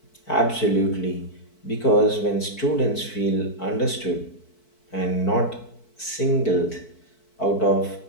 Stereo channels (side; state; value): right; late; 4.6 ms